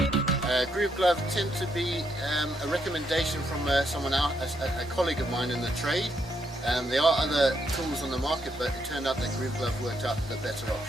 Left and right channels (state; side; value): normal; both; correlation 0.76